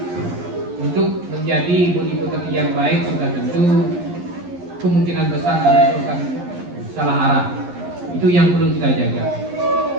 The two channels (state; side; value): late; left; 11 ms